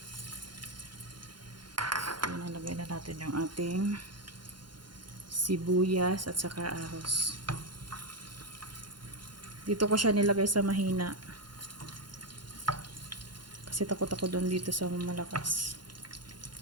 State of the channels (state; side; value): late; left; 0.71 ms